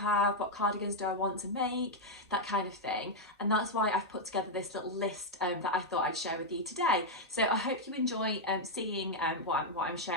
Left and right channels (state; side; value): normal; both; correlation -0.02